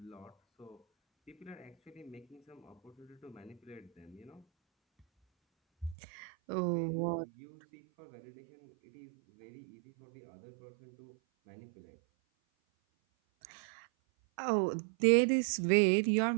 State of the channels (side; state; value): left; drops out; at 6.0 s